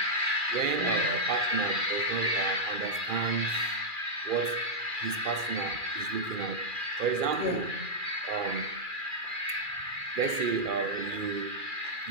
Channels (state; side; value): late; left; 2.4 ms